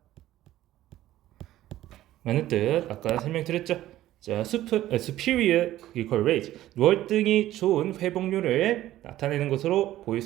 라는 뜻 아까 설명드렸죠. 자, superior clinical rate 월등히 좋은 회복률을 나타내는 것으로 보일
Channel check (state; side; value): quieter; left; 14.2 dB